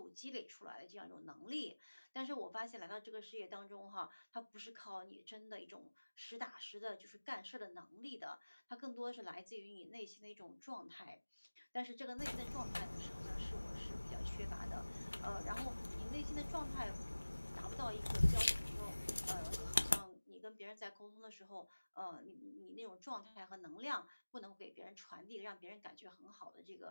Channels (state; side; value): inverted; both; correlation -1.00